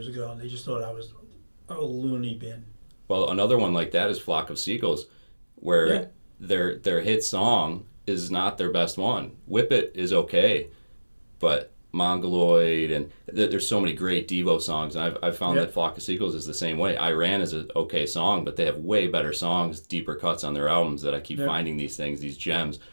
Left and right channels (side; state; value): both; inverted; correlation -1.00